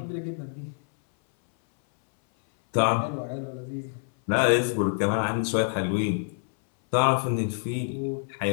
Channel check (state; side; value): silent; right; 60 dB below the other